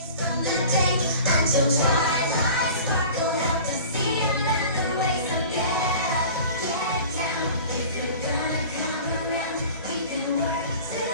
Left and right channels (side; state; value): both; inverted; correlation -0.41